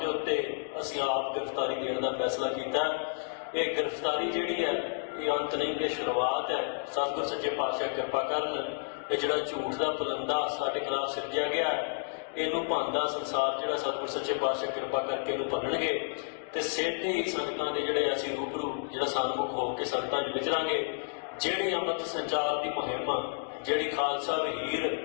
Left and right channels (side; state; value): right; silent; digital silence